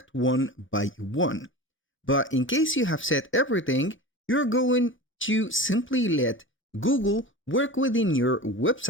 one by one. But in case you have set everything, you're going to simply let Google work within your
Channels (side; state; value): both; normal; correlation 0.32